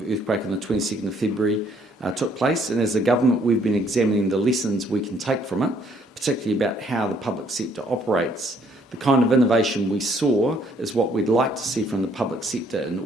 earthquake on the 22nd of February took place, and as a government we've been examining the lessons we can take from it, particularly about how the public sector operates. The kind of innovation we saw is what we'd like to see from the public sector in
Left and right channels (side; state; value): both; normal; correlation 0.65